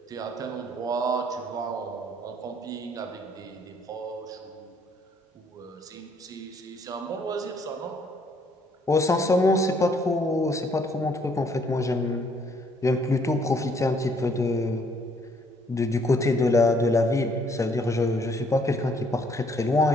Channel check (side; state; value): both; normal; correlation 0.65